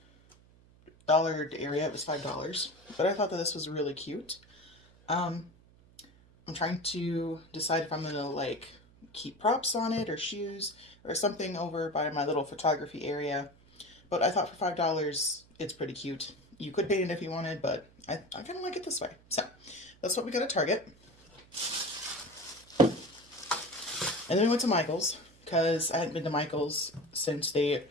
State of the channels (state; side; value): noise; right; hum, 27 dB below the sound